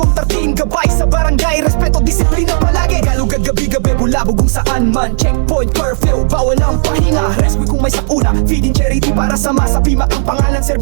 13, gabay sa barangay. Respeto, disiplina palagi. Galugad gabi-gabi, bulabog kung saan man. Checkpoint, curfew, bawal ang pahinga. Rescue kung may sakuna, feeding charity para sa masa. Pimac ang pangalan,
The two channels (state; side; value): silent; left; digital silence